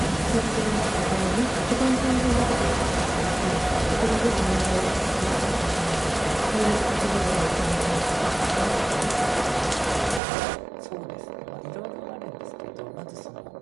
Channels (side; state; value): left; drops out; at 10.2 s